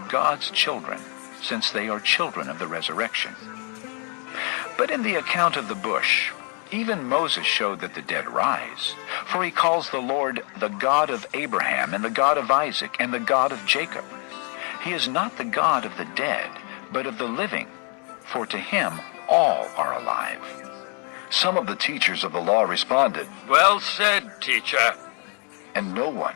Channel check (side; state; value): right; quieter; 38.9 dB